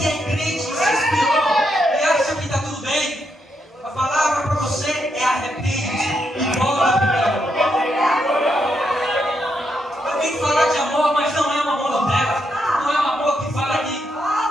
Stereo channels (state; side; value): normal; both; correlation 0.80